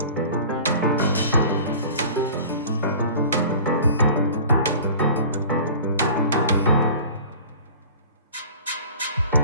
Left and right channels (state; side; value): inverted; both; correlation -0.43